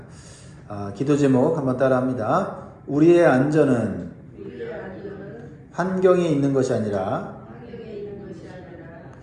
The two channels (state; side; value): identical; both; correlation 1.00